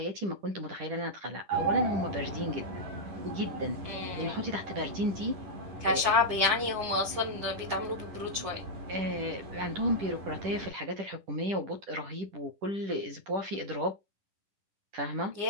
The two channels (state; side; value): late; left; 10 ms